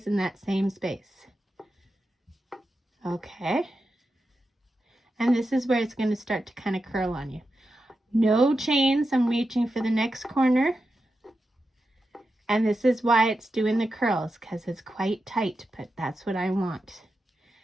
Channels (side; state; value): both; normal; correlation 0.89